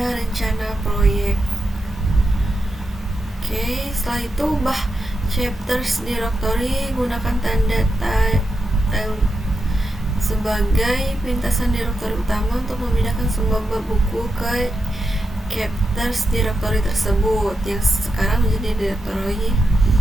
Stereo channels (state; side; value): normal; both; correlation 0.86